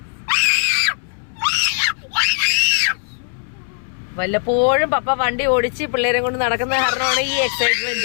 വല്ലപ്പോഴും പപ്പ വണ്ടി ഓടിച്ച് പിള്ളേരെ കൊണ്ട് നടക്കുന്ന കാരണമാണ് ഈ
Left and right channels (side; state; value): right; silent; 66 dB below the other